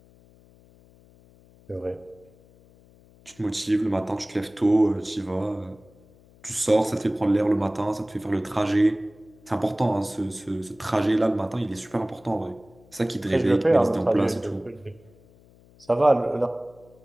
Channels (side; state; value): left; noise; hum, 27 dB below the sound